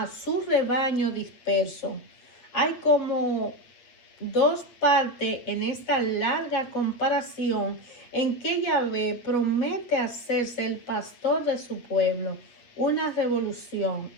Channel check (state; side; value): late; right; 8.1 ms